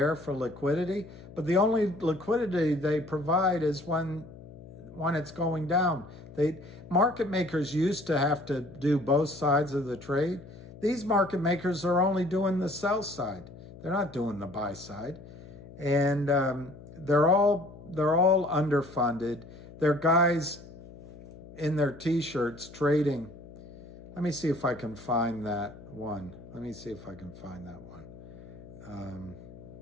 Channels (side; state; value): left; noise; hum, 17 dB below the sound